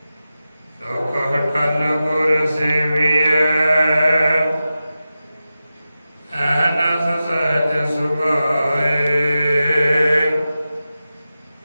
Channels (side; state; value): both; inverted; correlation -0.93